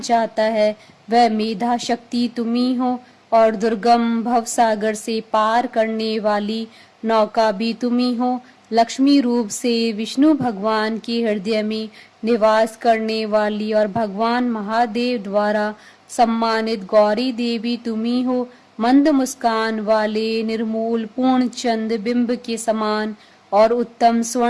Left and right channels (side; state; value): both; identical; correlation 1.00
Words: है, वह मेधा शक्ति तुम ही हो और दुर्गम भव सागर से पार करने वाली नौका भी तुम ही हो। लक्ष्मी रूप से विष्णु भगवान के हृदय में निवास करने वाली और भगवान महादेव द्वारा सम्मानित गौरी देवी तुम ही हो। मंद मुस्कान वाले निर्मूल पूर्ण चंद बिंब के समान और उत्तम